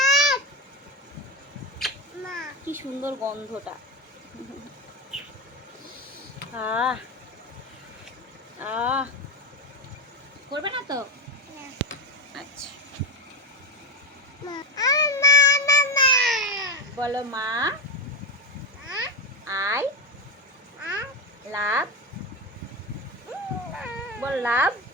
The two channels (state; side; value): normal; both; correlation 0.13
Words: কি সুন্দর গন্ধটা। আহ আহ, করবে না তো? আচ্ছা, বলো মা, আই লাভ, বল love